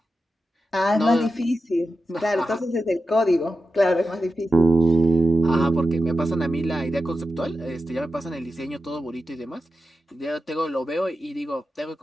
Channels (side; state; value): both; normal; correlation 0.91